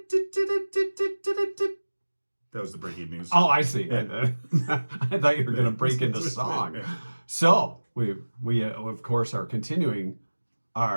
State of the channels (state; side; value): inverted; both; correlation -1.00